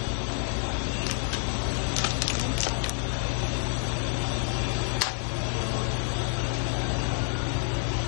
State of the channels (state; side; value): silent; right; 58 dB below the other